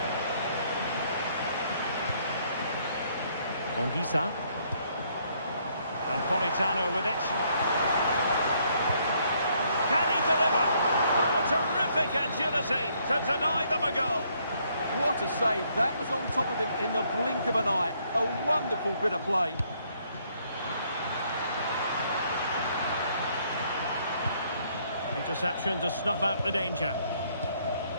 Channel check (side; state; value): both; inverted; correlation -0.68